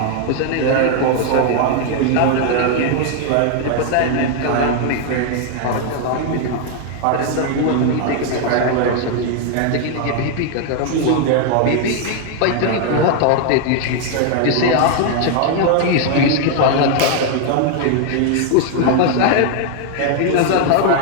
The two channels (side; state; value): both; different; correlation 0.00